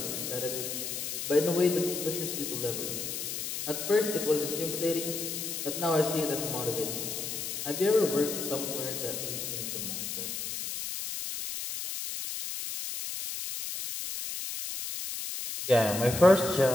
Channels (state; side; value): noise; left; hiss, 4 dB below the sound